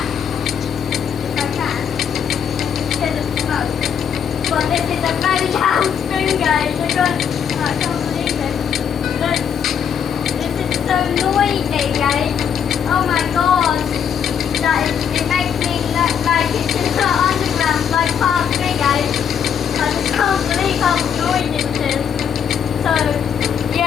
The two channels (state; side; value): quieter; right; 7.9 dB